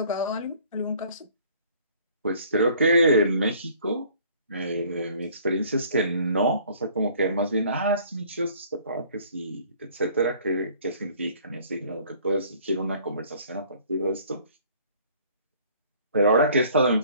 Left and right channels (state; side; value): inverted; both; correlation -0.56